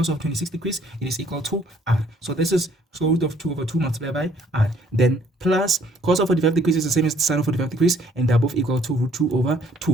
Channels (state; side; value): normal; both; correlation 0.62